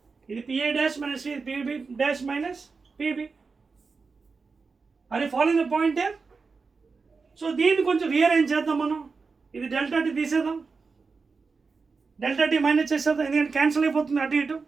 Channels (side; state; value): left; quieter; 4.6 dB